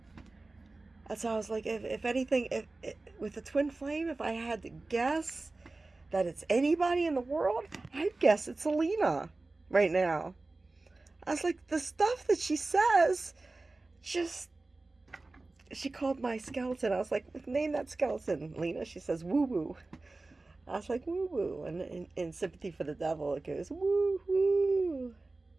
That's how I was like, if anything, with the twin flame, if I had to guess that it's anybody in the world, I'd guess it's Alina right now. I was like, the stuff that she says, she called my skeleton. I was like, name that skeleton, Lena. She says, woo woo. I was like, woo woo. And in Sympathy for the Devil, it goes, woo woo,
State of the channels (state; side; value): quieter; left; 3.3 dB